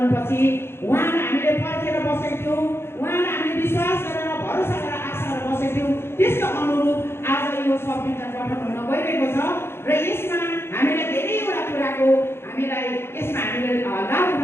उहाँलाई हामीले पर्खेर बसेको थियौँ, उहाँलाई हामीले विश्वास गरेर भरोसा गरेर आशा गरेर बसेको थियौँ, त्यसको अनुरूप आज यो संविधान गठन हुन गइरहेको छ। र यसमा हामीलाई धेरैवटा कुराको हामीलाई यसमा हामीले लाभ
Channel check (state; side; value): late; right; 0.12 ms